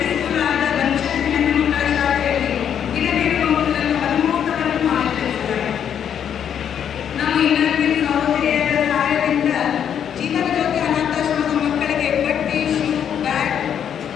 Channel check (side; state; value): right; quieter; 8.8 dB